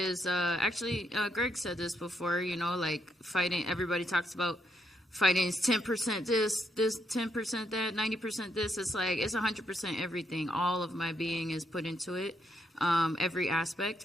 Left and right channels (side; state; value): both; normal; correlation 0.77